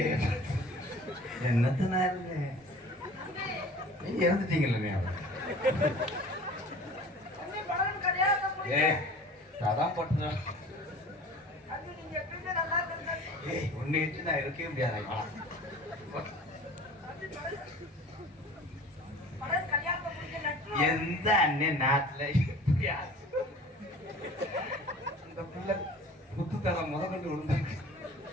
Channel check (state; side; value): normal; both; correlation 0.43